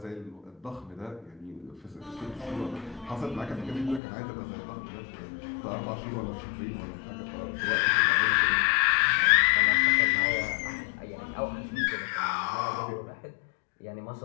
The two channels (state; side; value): drops out; right; at 4.0 s